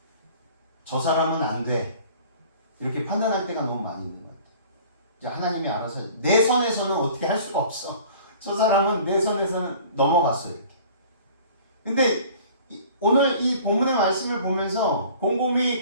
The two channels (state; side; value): inverted; both; correlation -0.48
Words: 저 사람은 안 돼. 이렇게 판단할 때가 너무 많이 있는 것 같아요. 이제 하나님이 알아서 내 선에서는 어떻게 할 수가 없어. 저 사람은 내 선에서는 넘어갔어요. 이렇게. 근데 오늘 이 본문의 말씀을 보면서